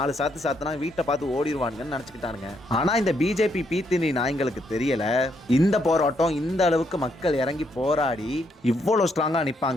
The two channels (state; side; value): normal; both; correlation 0.75